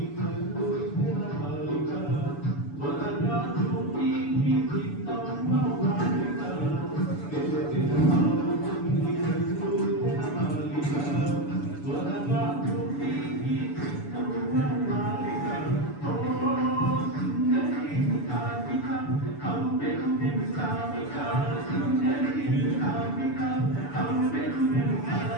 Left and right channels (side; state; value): right; late; 6.9 ms